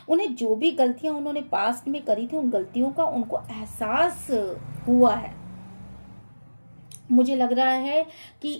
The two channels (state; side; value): inverted; both; correlation -1.00